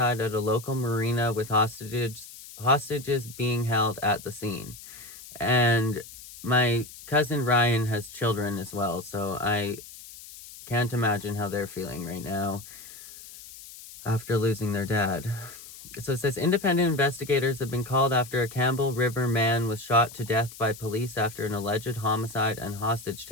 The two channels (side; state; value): left; noise; hiss, 16 dB below the sound